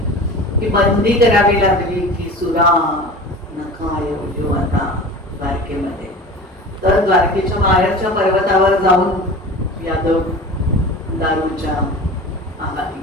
की बंदी करावी लागली की सुरा नका येऊ आता द्वारकेमध्ये. तर द्वारकेच्या बाहेरच्या पर्वतावर जाऊन यादव दारूच्या आहारी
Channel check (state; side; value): normal; both; correlation 0.36